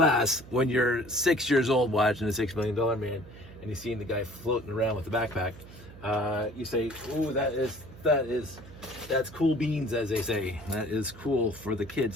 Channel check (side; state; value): right; noise; hum, 18 dB below the sound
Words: when you're 6 years old watching the $6 Million Man and you're seeing the guy floating around with the backpack, you say, "Ooh, that's cool beans," as they say. That is cool for the